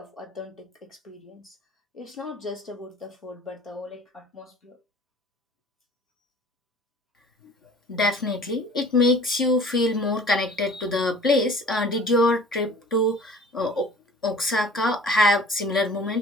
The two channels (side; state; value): both; normal; correlation 0.47